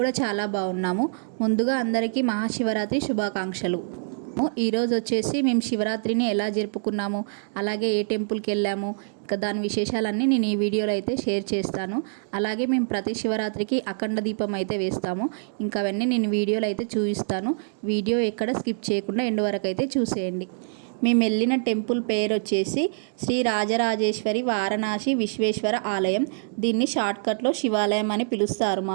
చాలా బాగున్నాము. ముందుగా అందరికీ మహాశివరాత్రి శుభాకాంక్షలు. ఈరోజు వచ్చేసి మేము శివరాత్రిని ఎలా జరుపుకున్నాము, అలాగే ఏ టెంపుల్కి వెళ్ళాము, ఇంకా దాని విశేషాలన్నీ నేను ఈ వీడియోలో అయితే షేర్ చేస్తాను. అలాగే మేము ప్రతి శివరాత్రికి అఖండ దీపం అయితే వేస్తాము. ఇంకా అవన్నీ నేను వీడియోలో అయితే చూపిస్తాను. వీడియో ఎక్కడ స్కిప్ చేయకుండా ఎండ్ వరకు అయితే చూసేయండి. మేము వెళ్ళిన టెంపుల్ పేరు వచ్చేసి శ్రీ రాజరాజేశ్వరి వారణాసి విశ్వేశ్వర ఆలయం. దీన్ని షార్ట్కట్లో శివాలయం అని పిలుస్తారు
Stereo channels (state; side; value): silent; left; digital silence